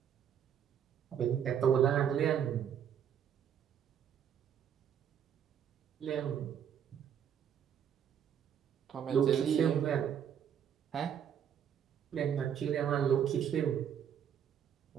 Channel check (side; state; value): left; quieter; 8.8 dB